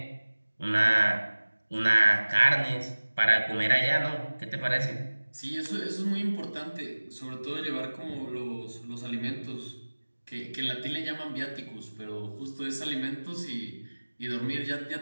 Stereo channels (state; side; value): inverted; both; correlation -1.00